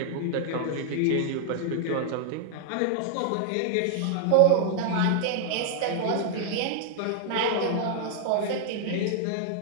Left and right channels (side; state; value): both; different; correlation 0.00